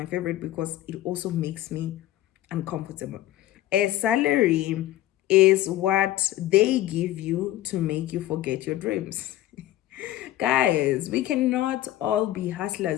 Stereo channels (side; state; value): right; quieter; 14.5 dB